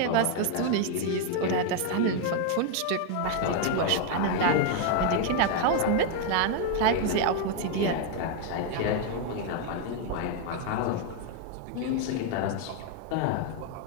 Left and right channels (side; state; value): both; different; correlation 0.01